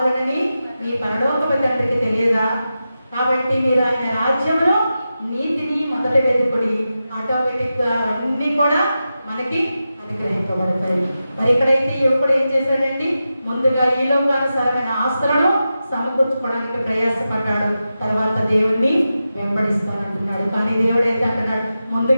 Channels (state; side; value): inverted; both; correlation -0.91